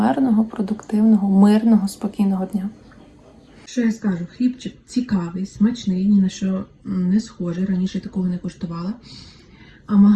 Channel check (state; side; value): identical; both; correlation 1.00